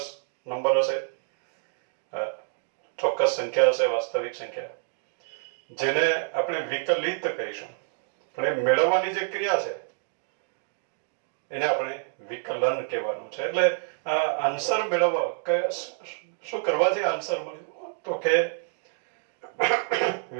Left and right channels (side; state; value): left; silent; digital silence